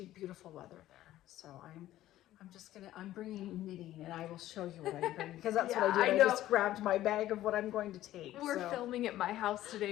beautiful weather there. So I'm bringing knitting, and I will show you what I'm bringing because that's what I did. I just grabbed my bag of what I'm going to take. We're filming at my house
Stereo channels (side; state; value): right; quieter; 14.1 dB